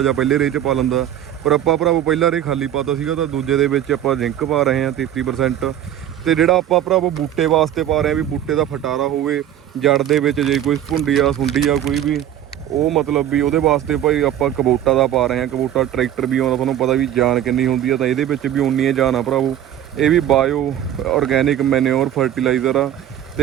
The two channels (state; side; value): quieter; left; 11.1 dB